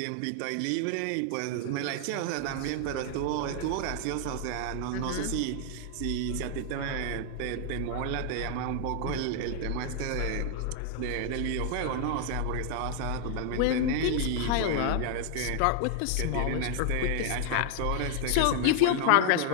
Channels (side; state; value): both; different; correlation 0.00